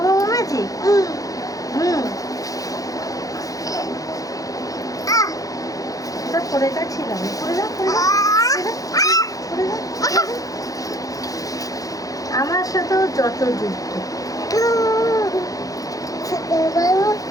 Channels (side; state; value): right; late; 0.17 ms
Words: বাবু ম্যাজিক? হুম, এটা পরে যাচ্ছিলাম। পরে যাও, পরে যাও, পরে যাও, পরে যাও। আমার সাথেও যত যুক্ত।